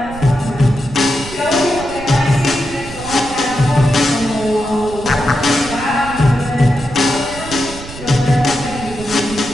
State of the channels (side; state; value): right; noise; rumble, 13 dB below the sound